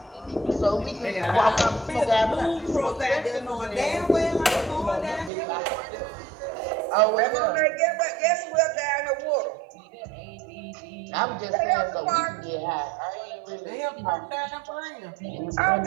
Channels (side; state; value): left; drops out; at 5.3 s